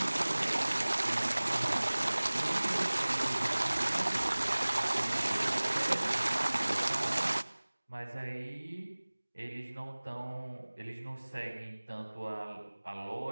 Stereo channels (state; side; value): inverted; both; correlation -1.00